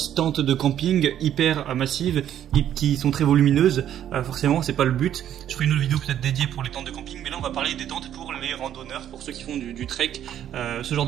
tentes de camping hyper massives et qui sont très volumineuses, forcément c'est pas le but. Je ferai une autre vidéo peut-être dédiée pour les tentes de camping, mais là on va parler des tentes pour les randonneurs, pour ceux qui font du trek, ce genre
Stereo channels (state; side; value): quieter; left; 10.7 dB